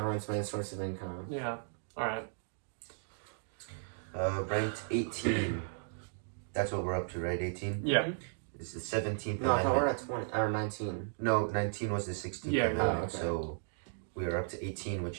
main source of income. Yeah. Alright. Ranked 18. That's what we're up to, right? 18? Yeah. It's the 17th No, Amendment. I thought we're at 20, or 19. No, 19 was the 16th Amendment. Okay. So we are up to 18,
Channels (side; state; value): left; silent; digital silence